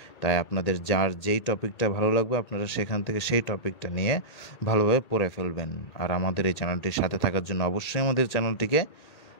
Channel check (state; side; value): late; right; 1.8 ms